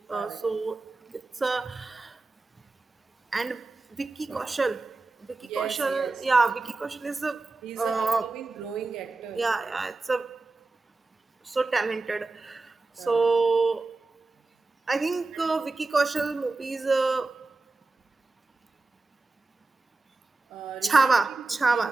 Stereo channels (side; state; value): left; quieter; 3.6 dB